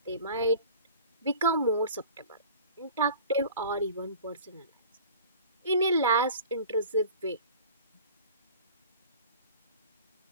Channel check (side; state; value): both; inverted; correlation -0.43